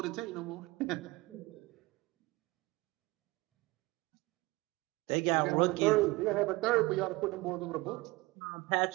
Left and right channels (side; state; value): left; quieter; 22.0 dB